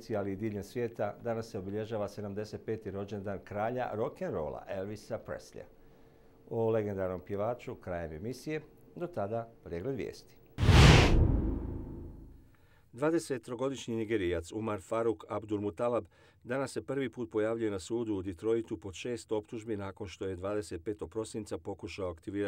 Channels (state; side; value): identical; both; correlation 1.00